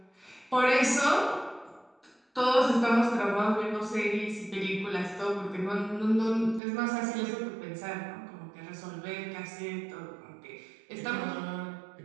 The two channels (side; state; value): left; drops out; at 6.6 s